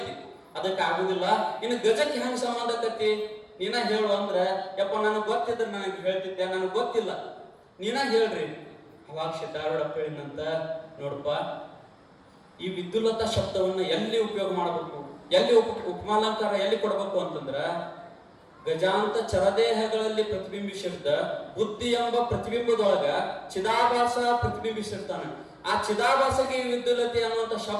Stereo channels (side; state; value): both; identical; correlation 1.00